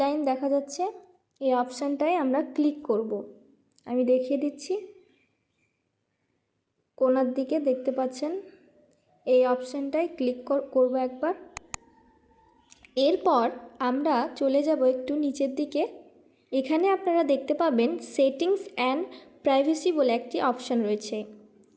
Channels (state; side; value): identical; both; correlation 1.00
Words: লাইন দেখা যাচ্ছে এই অপশানটায় আমরা ক্লিক করব। আমি দেখিয়ে দিচ্ছি, কোণার দিকে দেখতে পাচ্ছেন এই অপশানটায় ক্লিক করব একবার। এরপর আমরা চলে যাব একটু নিচের দিকে। এখানে আপনারা দেখতে পাবেন সেটিংস অ্যান্ড প্রাইভেসি বলে একটি অপশান রয়েছে,